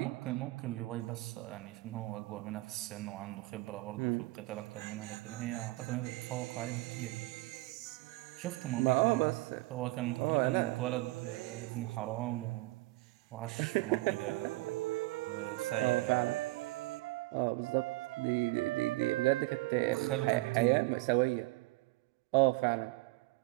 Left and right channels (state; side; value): quieter; left; 21.8 dB